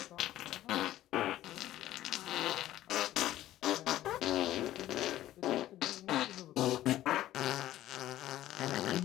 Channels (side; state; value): right; quieter; 14.0 dB